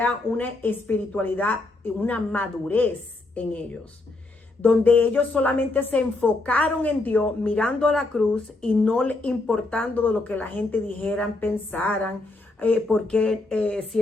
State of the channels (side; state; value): right; quieter; 3.0 dB